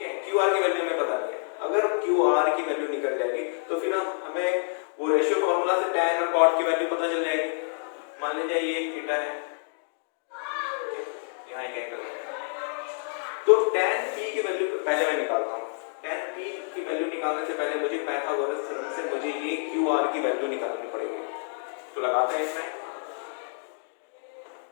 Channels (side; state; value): right; silent; digital silence